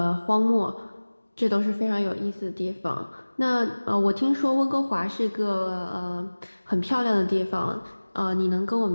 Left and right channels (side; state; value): both; inverted; correlation -1.00